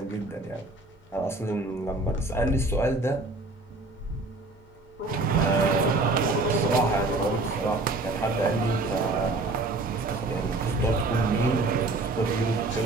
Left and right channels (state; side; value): quieter; left; 3.1 dB